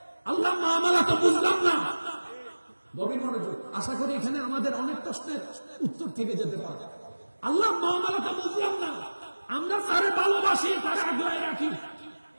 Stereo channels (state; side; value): inverted; both; correlation -1.00